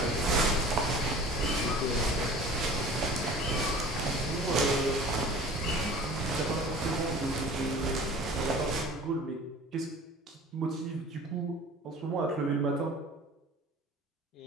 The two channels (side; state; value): both; normal; correlation 0.43